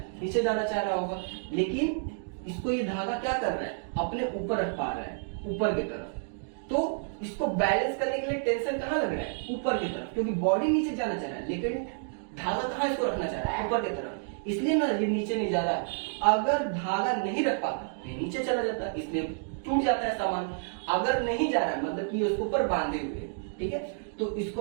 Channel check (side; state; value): left; silent; digital silence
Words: नीचे जाना चाह रहा होगा। लेकिन इसको ये धागा क्या कर रहा है, अपने ऊपर रख पा रहा है, ऊपर की तरफ। तो इसको बैलेंस करने के लिए टेंशन कहाँ लग रहा है, ऊपर की तरफ, क्योंकि बॉडी नीचे जाना चाह रहा है, लेकिन धागा कहाँ इसको रखना चाह रहा है, ऊपर की तरफ, इसलिए ना ये नीचे नहीं जा रहा है। अगर धागा नहीं रख पाता ये नीचे चला जाता, इसलिए टूट जाता है सामान। अगर नहीं जा रहा है मतलब कि उसके ऊपर बांधे हुए, ठीक है। तो